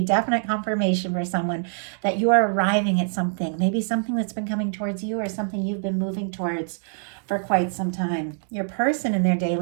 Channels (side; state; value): left; silent; digital silence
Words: definite confirmation for someone that you are arriving at something, maybe something that's been coming towards you, or something you've been moving towards for quite some time. Your person in their